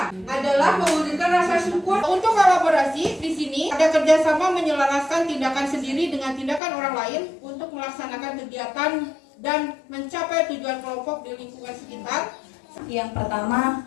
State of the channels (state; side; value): drops out; right; at 6.6 s